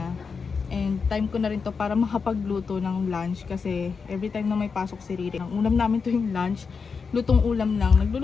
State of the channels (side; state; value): right; quieter; 5.3 dB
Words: And time ko na rin to para makapagluto ng lunch kasi every time na may pasok si Riri, ang ulam namin to yung lunch, lutong ulam lang.